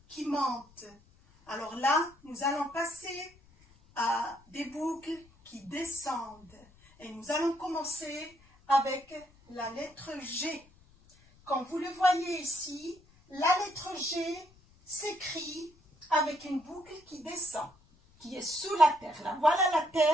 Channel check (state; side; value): noise; left; rumble, 28 dB below the sound